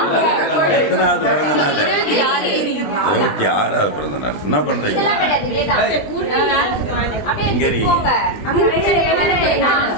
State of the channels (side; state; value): right; late; 20 ms